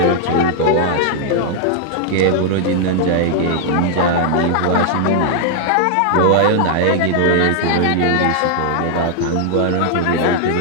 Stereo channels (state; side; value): different; both; correlation -0.01